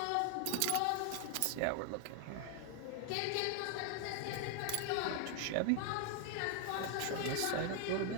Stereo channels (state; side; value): different; both; correlation 0.00